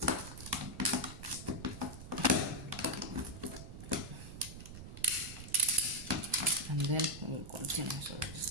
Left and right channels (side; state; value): right; noise; rumble, 12 dB below the sound